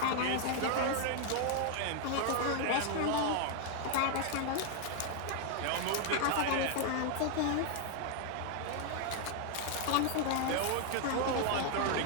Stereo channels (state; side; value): different; both; correlation 0.00